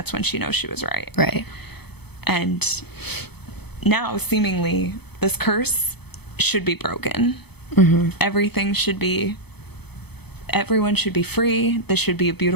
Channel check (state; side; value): late; right; 0.98 ms